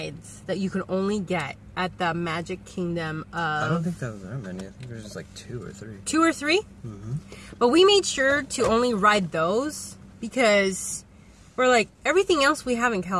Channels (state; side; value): identical; both; correlation 1.00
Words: that you could only get at the Magic Kingdom of... I don't think there was that many. I think there's just like 2 or 3. 2 or 3? Mm-hmm. But we made sure to only ride those because we're like, everything else we have in